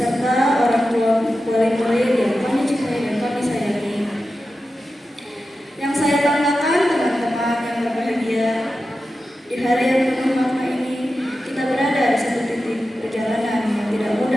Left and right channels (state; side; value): normal; both; correlation 0.92